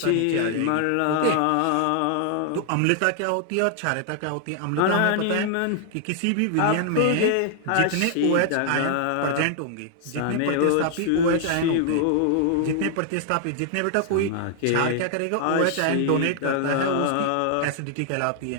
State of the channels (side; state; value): both; different; correlation 0.00